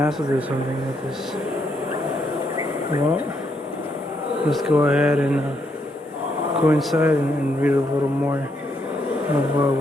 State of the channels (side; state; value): both; normal; correlation 0.76